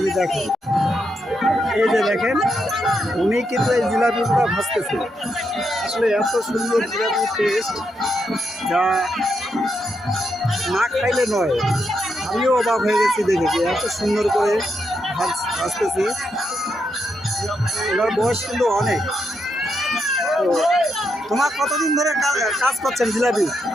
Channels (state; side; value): normal; both; correlation 0.81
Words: এই যে দেখেন উনি কিন্তু এই জিলাপিগুলো ভাজতেছে। আসলে এত সুন্দর জিলাপির টেস্ট যা না খাইলে নয়। আমিও অবাক হয়ে গেছি দেখে যে এত সুন্দর করে ভাজতেছে। ওনার বয়স কিন্তু অনেক। তো তোমার কতদিন ধরে কাজ করছেন জিলাপি?